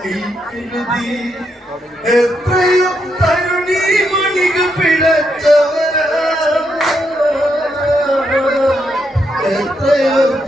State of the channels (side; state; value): both; normal; correlation 0.79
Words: കരുതി എത്രയും തരുണി മണികൾ പിഴച്ചവരാ എത്രയോ